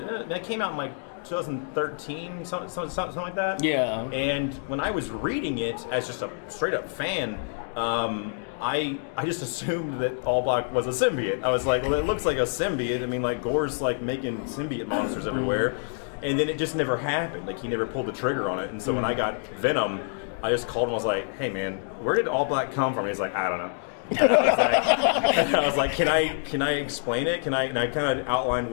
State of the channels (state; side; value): silent; right; 60 dB below the other